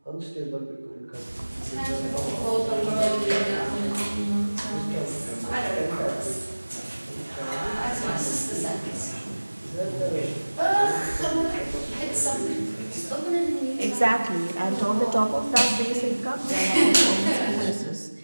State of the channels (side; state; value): both; inverted; correlation -1.00